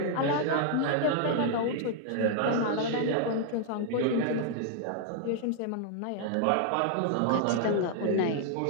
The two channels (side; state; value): both; different; correlation 0.00